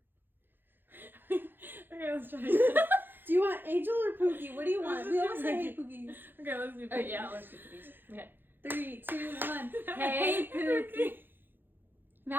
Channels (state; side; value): late; left; 0.097 ms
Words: Angel. Okay, let's try it. Do you want Angel or Pookie? What do you want? We always say hey Pookies. Okay, let's do Pookies. Oh, yeah, let's do Pookies. Okay. 3, 2, 1. Hey, Pookie.